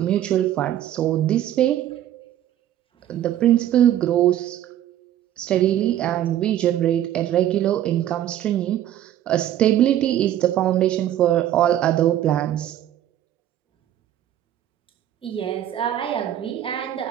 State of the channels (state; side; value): quieter; left; 11.8 dB